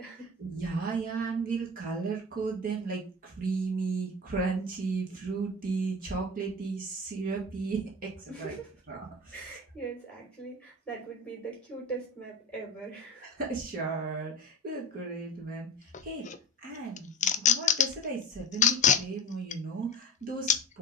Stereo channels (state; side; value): normal; both; correlation 0.32